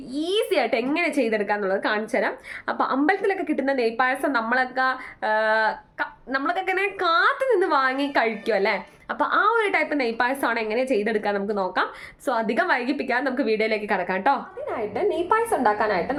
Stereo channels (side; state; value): both; identical; correlation 1.00